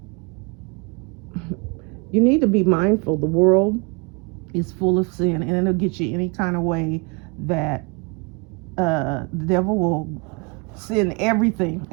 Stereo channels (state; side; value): quieter; left; 30.2 dB